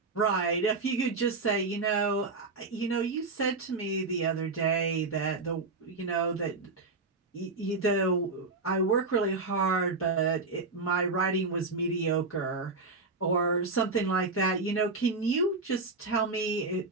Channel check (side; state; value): left; quieter; 3.8 dB